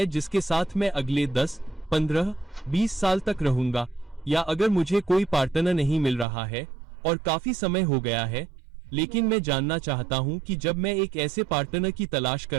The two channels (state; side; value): drops out; left; at 6.2 s